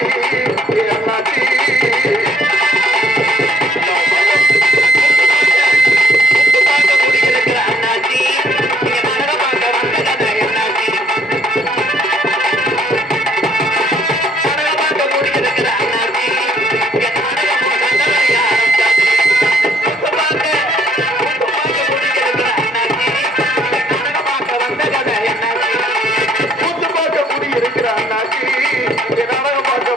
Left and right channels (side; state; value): both; normal; correlation 0.64